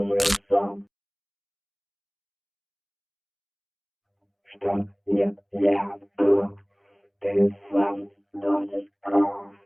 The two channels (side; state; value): both; identical; correlation 1.00